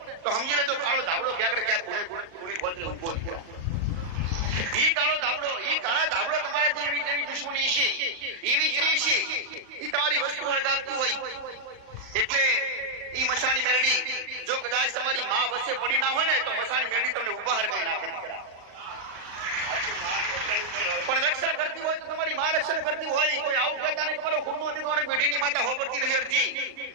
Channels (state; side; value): late; left; 38 ms